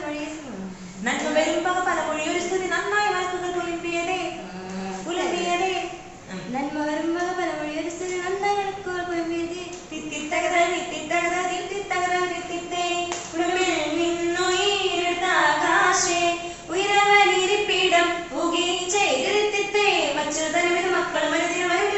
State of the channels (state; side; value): identical; both; correlation 1.00